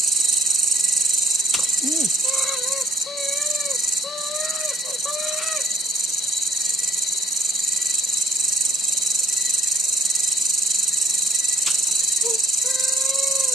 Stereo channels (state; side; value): normal; both; correlation 0.57